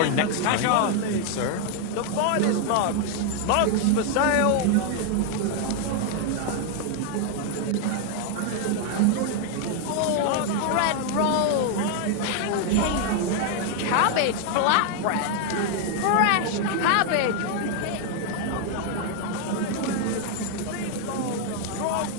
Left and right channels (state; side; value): different; both; correlation 0.00